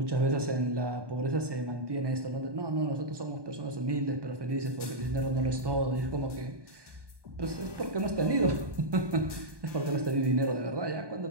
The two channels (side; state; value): left; late; 1.2 ms